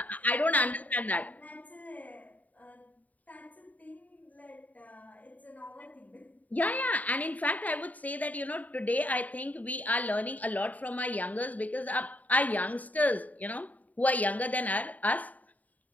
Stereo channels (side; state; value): right; late; 0.074 ms